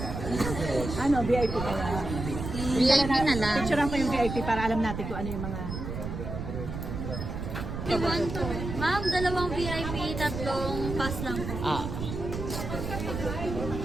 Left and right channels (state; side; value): noise; right; rumble, 5 dB below the sound